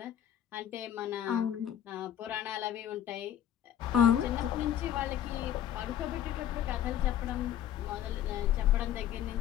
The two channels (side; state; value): right; quieter; 10.7 dB